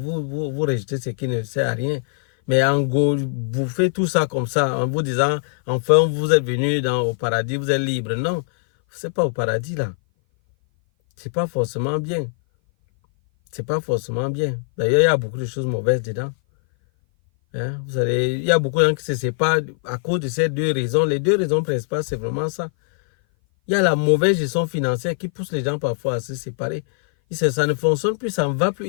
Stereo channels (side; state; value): right; silent; 58 dB below the other